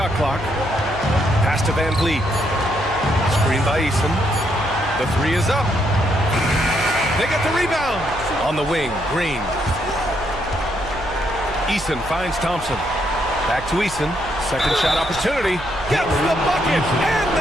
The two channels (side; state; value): right; noise; hum, 14 dB below the sound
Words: clock. Pass to Van Vliet. Screen by Eason. The 3 is up. They get the rebound. On the wing, Green. Eason finds Thompson. Back to Eason. Second shot opportunity. Gets the bucket and